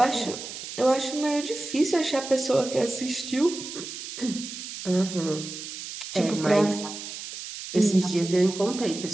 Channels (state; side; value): noise; right; hiss, 9 dB below the sound